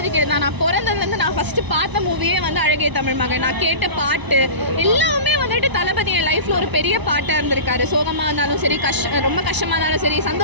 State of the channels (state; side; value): late; left; 1.0 ms